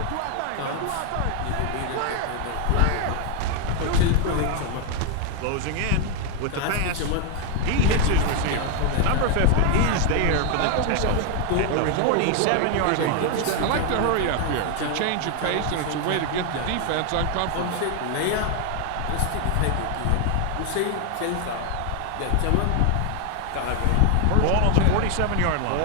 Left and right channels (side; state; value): both; different; correlation 0.01